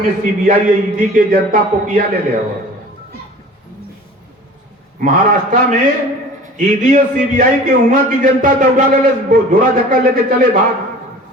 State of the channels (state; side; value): normal; both; correlation 0.43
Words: सीबीआई ईडी के जनता पोकिया ले ले, महाराष्ट्र में ईडी और सीबीआई के वहां की जनता दौड़ा ले, झोरा धक्का लेके चले भाग।